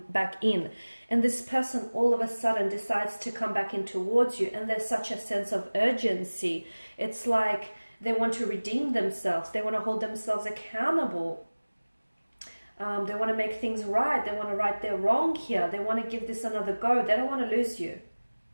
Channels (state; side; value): inverted; both; correlation -1.00